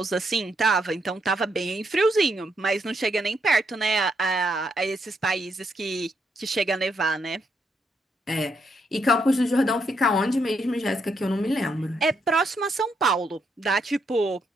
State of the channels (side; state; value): both; normal; correlation 0.77